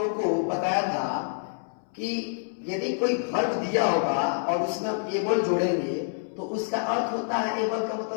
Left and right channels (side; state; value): right; silent; 60 dB below the other